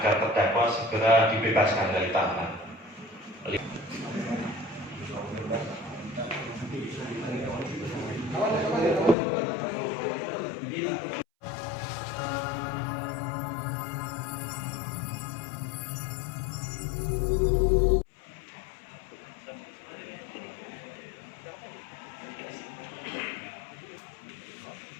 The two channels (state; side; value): drops out; right; at 9.2 s